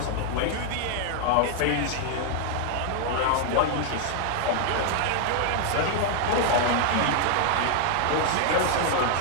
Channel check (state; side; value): different; both; correlation 0.00